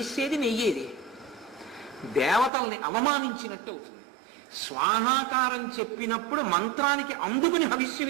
నెయ్యేది? దేవతల్ని అవమానించినట్టు అవుతుంది. స్వాహాకారం చెప్పినప్పుడు మంత్రానికి అందుకుని హవిస్సు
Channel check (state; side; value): drops out; left; at 2.5 s